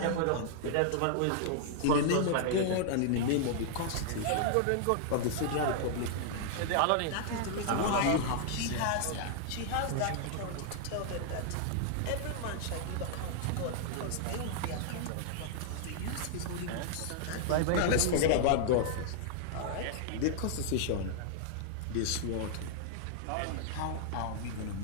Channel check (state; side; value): different; both; correlation -0.01